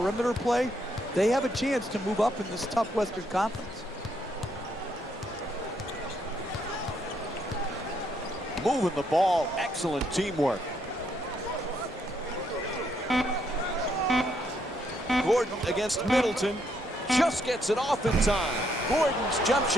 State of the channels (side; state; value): both; normal; correlation 0.74